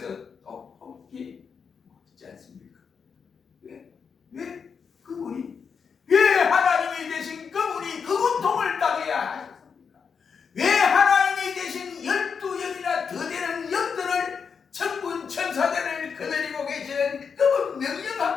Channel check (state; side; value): quieter; right; 6.2 dB